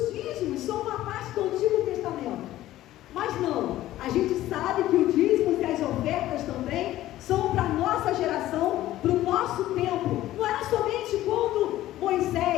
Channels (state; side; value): quieter; right; 14.6 dB